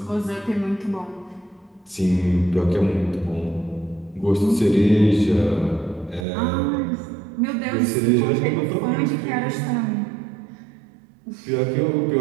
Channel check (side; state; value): left; drops out; at 6.2 s